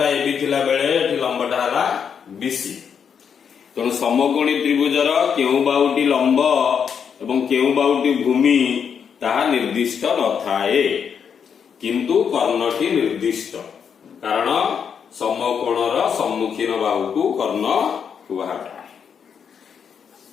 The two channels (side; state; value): right; quieter; 7.2 dB